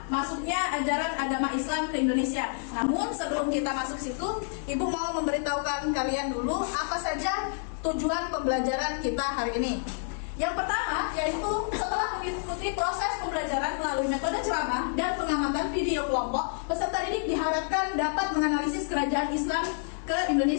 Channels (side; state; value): right; silent; 59 dB below the other